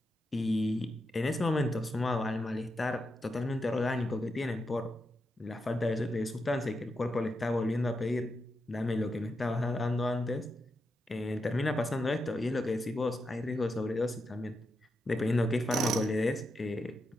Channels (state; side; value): normal; both; correlation 0.86